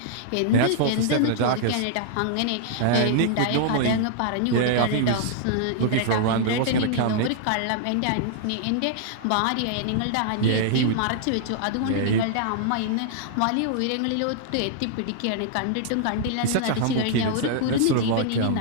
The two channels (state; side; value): different; both; correlation -0.01